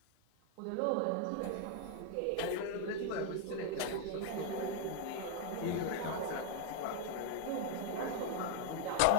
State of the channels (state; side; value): different; both; correlation 0.00